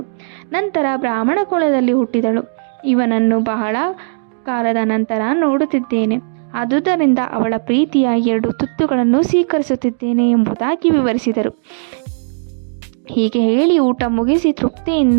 ನಂತರ ಬ್ರಾಹ್ಮಣ ಕುಲದಲ್ಲಿ ಹುಟ್ಟಿದಳು. ಇವನನ್ನು ಬಹಳ ಕಾಲದ ನಂತರ ನೋಡುತ್ತಿದ್ದೇನೆ. ಆದುದರಿಂದ ಅವಳ ಪ್ರೀತಿಯ 2 ತುತ್ತುಗಳನ್ನು ಸ್ವೀಕರಿಸುತ್ತಿದ್ದೇನೆ ಎಂಬುದಾಗಿ ವಿವರಿಸಿದರು. ಹೀಗೆ ಹೇಳಿ ಊಟ ಮುಗಿಸಿ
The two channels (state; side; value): silent; left; 67 dB below the other